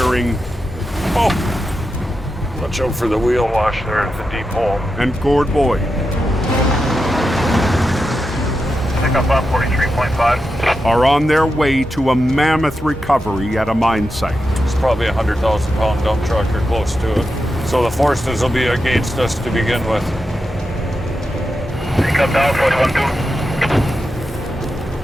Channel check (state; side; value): normal; both; correlation 0.88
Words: Oh! Watch out for the wheel wash there at the deep hole. And Gord Boyd Pick up 43.5. are on their way to a mammoth recovery at a mine site. It's probably a 100,000-pound dump truck or close to it. So the forces will be against us to begin with. Pick up down 41.2.